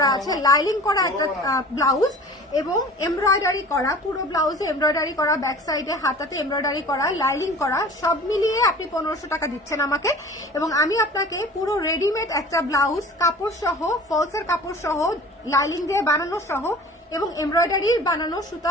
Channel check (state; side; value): normal; both; correlation 0.42